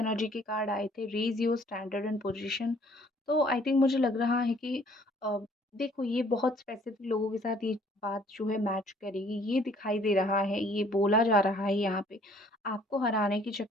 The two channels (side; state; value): both; normal; correlation 0.59